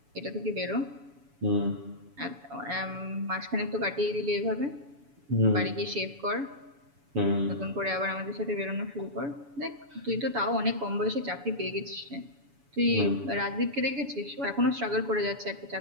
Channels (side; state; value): left; late; 7.1 ms